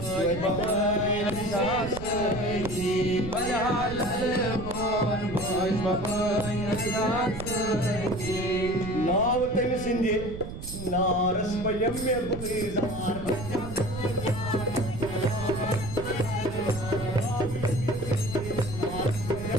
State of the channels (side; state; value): right; noise; rumble, 9 dB below the sound